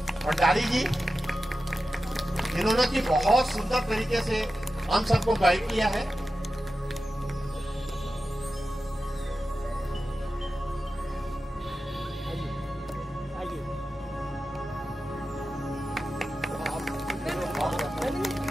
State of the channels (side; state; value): both; normal; correlation 0.92